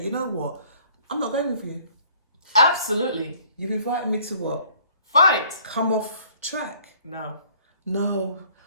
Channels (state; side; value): inverted; both; correlation -0.58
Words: you know what? I'm not going with you. Absolutely. You've invited me to what? Fight. Come off track. No. No.